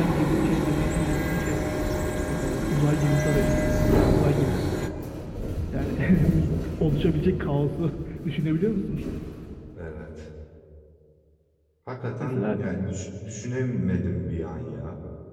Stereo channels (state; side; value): identical; both; correlation 1.00